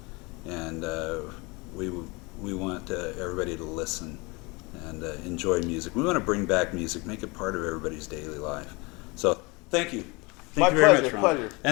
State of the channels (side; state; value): right; quieter; 26.7 dB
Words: And we want everybody to listen and enjoy music. We want to bring back music, make it part of everybody's daily life. So thank you. Thank My you very pleasure, much, Ron. pleasure.